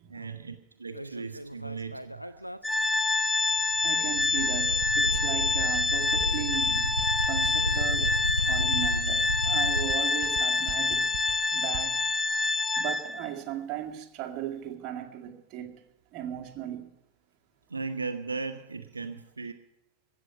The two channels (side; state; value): both; normal; correlation 0.51